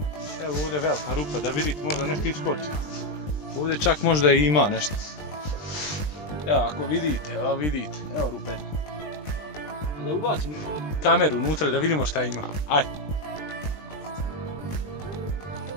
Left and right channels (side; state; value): right; late; 20 ms